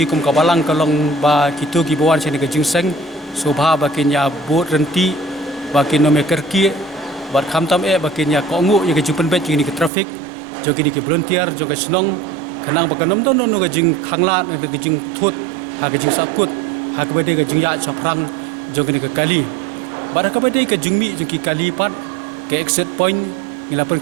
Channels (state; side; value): drops out; left; at 9.9 s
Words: kum ka balang ka long ba kitu ki bawan sene ka GSN sobha ba kinya bot renti ba kinome kerki bat kham tam bakin ya ko ngu ya ke jupen bet ni ke traffic jo ki volunteer jo ke Sinong khanang ba kanom don no ga jing khangla na ga jing thut ha ga jing sakut ha ka bede ga jing ya chaprang jo ke kali bar ka bede ka jingmi jo ki kali pat ke exit point ngila pen